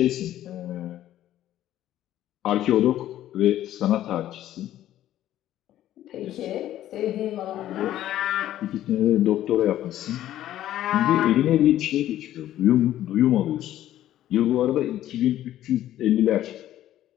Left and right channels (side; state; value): right; quieter; 12.9 dB